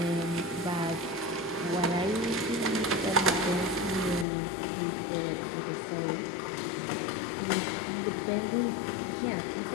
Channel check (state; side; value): drops out; right; at 4.2 s